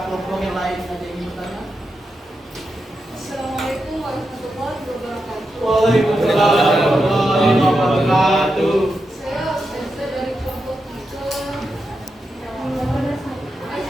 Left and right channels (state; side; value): normal; both; correlation 0.87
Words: kelompok yang lain ada yang ingin bertanya? Assalamualaikum warahmatullahi wabarakatuh. Waalaikumsalam warahmatullahi wabarakatuh. Saya Ustazah dari kelompok 3.